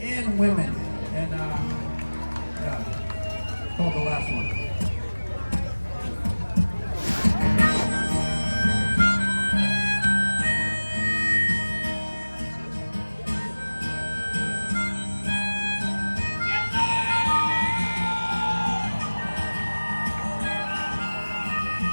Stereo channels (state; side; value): inverted; both; correlation -1.00